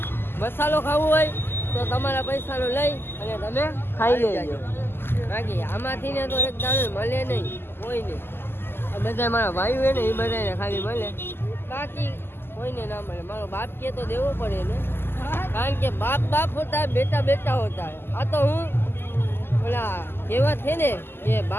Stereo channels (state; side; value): late; right; 0.11 ms